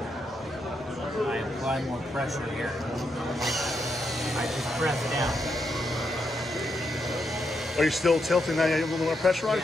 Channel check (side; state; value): both; normal; correlation 0.81